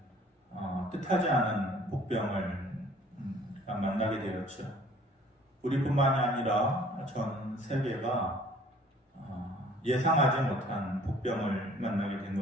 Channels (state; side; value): normal; both; correlation 0.54